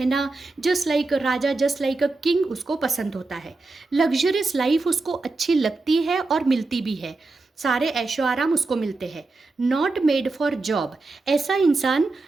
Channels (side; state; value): left; quieter; 3.5 dB